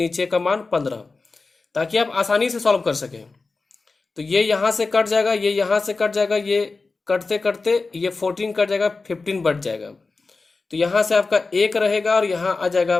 का मान 15, ताकि आप आसानी से सॉल्व कर सकें। तो ये यहाँ से कट जाएगा, ये यहाँ से कट जाएगा, ये कटते कटते ये 14 कट जाएगा, 15 बच जाएगा। तो यहाँ से आपका 1 रहेगा और यहाँ आ जाएगा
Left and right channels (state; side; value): quieter; right; 3.9 dB